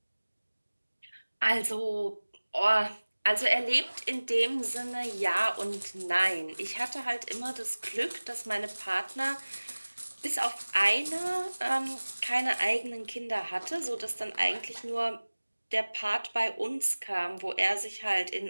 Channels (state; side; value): inverted; both; correlation -1.00